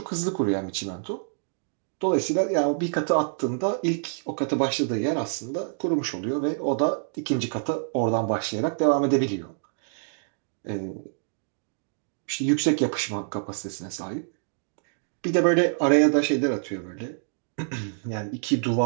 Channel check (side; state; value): left; silent; digital silence